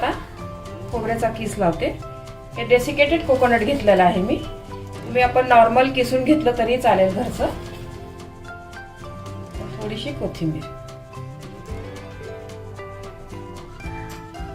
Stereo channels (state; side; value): identical; both; correlation 1.00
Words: खोबऱ्याचा किस लावते। हे डेसिकेटेड कोकोनट घेतलेलं आहे मी आपण नॉर्मल किसून घेतलं तरी चालेल घरचं। थोडीशी कोथिंबीर,